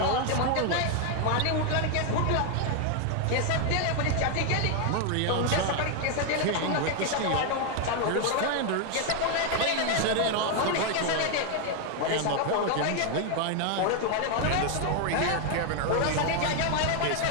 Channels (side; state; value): both; different; correlation 0.01